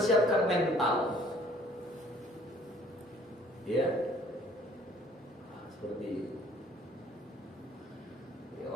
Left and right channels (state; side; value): normal; both; correlation 0.57